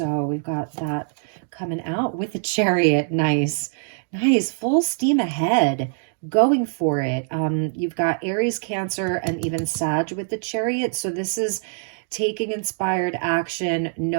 we've got that coming out with the Chariot. Nice, full steam ahead, going for it. You've got Aries, Cancer, and even Sag with the Chariot. So this is taking inspired action,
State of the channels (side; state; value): left; silent; digital silence